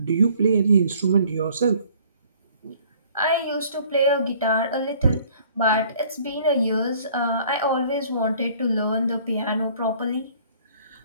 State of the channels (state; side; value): inverted; both; correlation -0.56